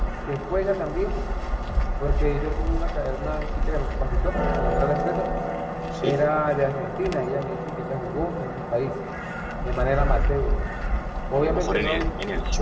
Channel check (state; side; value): identical; both; correlation 1.00